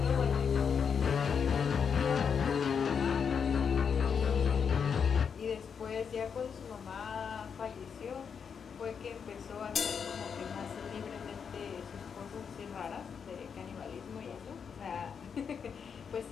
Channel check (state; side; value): quieter; right; 6.7 dB